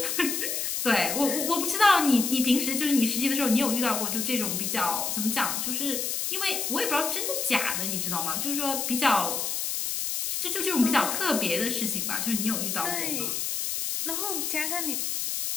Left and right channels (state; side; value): noise; left; hiss, 1 dB below the sound